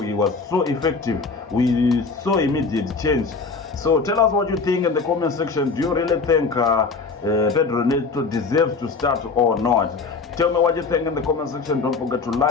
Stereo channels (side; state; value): right; quieter; 4.4 dB